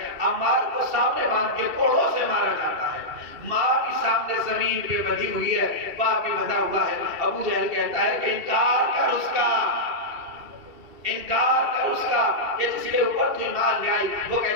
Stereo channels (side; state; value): left; late; 2.7 ms